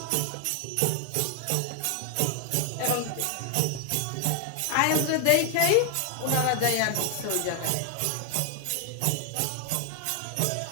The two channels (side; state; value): both; different; correlation 0.00